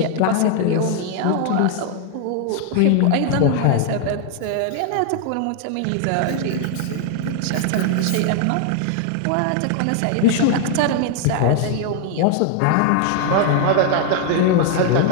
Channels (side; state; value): both; different; correlation 0.00